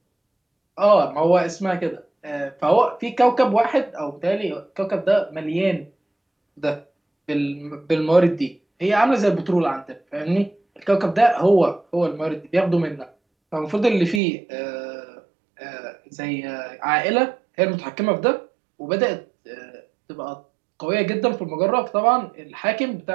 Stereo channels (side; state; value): left; drops out; at 14.2 s